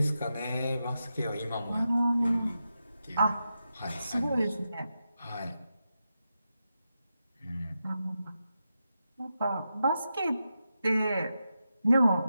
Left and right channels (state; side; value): inverted; both; correlation -0.88